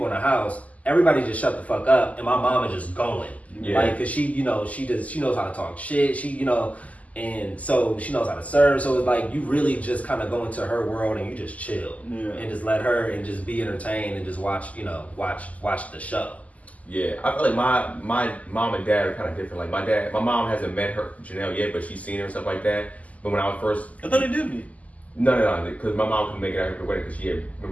in the house, everybody just shut the fuck up, and my mom is just going. Like cause she, you know, she knows how to talk shit. She, you know, and so she knows how to serve. So it's like you really just kind of go into her world and you just chill and just let her and just be entertained and just watch the show. Yeah, I feel like my mom and dad are kind of different. Like my mom hasn't met her Janelle yet, but she's seen her and stuff like that. But when I was first, I thought they did meet. No, because my mom couldn't make it out her wedding because she had.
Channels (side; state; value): right; late; 0.072 ms